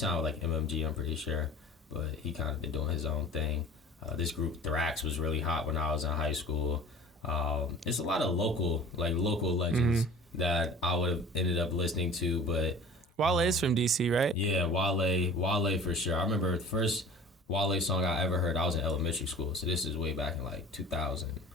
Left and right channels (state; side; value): normal; both; correlation 0.42